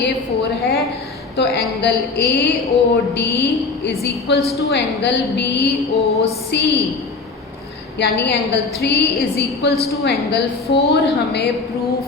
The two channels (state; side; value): quieter; right; 4.1 dB